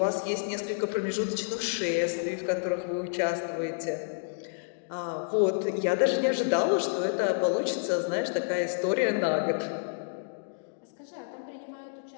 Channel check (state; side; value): silent; right; digital silence